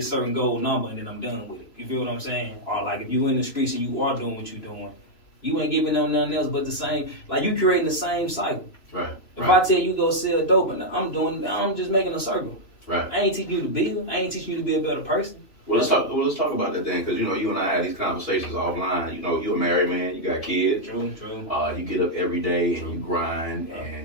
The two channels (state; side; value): late; right; 3.0 ms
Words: certain goal number, and then I'm done with it. You feel what I'm saying? Or like, if you in the streets and you are doing what you're doing, you ain't giving them nothing else but the same. Like, you creating the same cycle. Right. If I tell you go sell dope, and I'm just making a circle. Right. I ain't teaching you to build. I ain't teaching you to be a better person. Well, let's talk about that then, because you know you and I had these conversations offline. You know, you're a married man, you got kids. True. You get up every day and you grind,